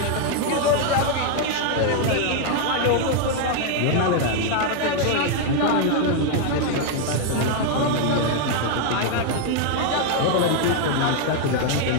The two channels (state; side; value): different; both; correlation 0.00